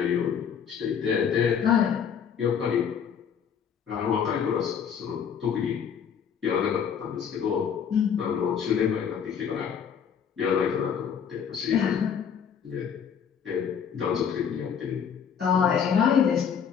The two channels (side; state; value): right; quieter; 7.5 dB